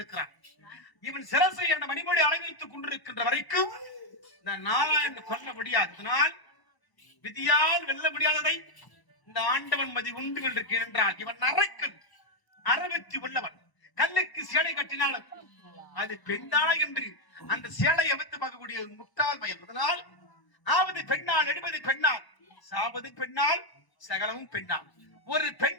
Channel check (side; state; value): right; late; 1.0 ms